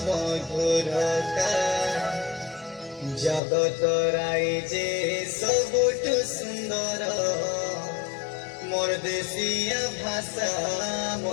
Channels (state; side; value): drops out; right; at 3.4 s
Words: মধুরতা জগত রাই যে সবুঠু সুন্দর মোর দেশিয়া ভাষা